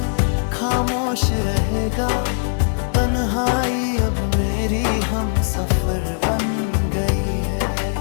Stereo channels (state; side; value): silent; right; 59 dB below the other